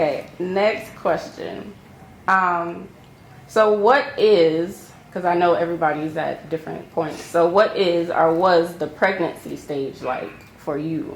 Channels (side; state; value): both; identical; correlation 1.00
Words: next question. So what is, because I know everybody's at different points, so what is or was the pregnancy stage like for